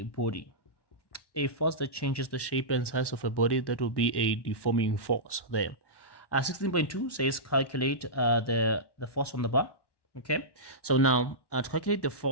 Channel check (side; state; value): right; late; 1.1 ms